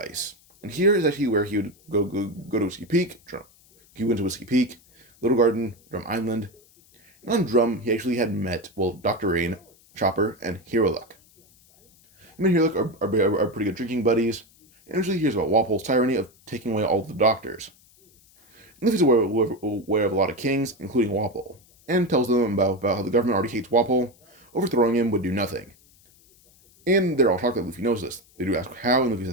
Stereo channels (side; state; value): left; noise; hiss, 29 dB below the sound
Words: And here is actually where he would go to Whiskey Peak. He went to Whiskey Peak, Little Garden, Drum Island. And on Drum, he actually had met, well, Dr. Rain, Chopper, and Hero Luck. Him and Hero Luck are pretty good drinking buddies, and usually hears about Walpole's tyranny of taking away all of the doctors. And Luffy's aware of a lot of kings, including Walpole, and tells them about how the government already hates Walpole, overthrowing him would do nothing. And they're all shocked that Luffy knows this. They do ask how, and Luffy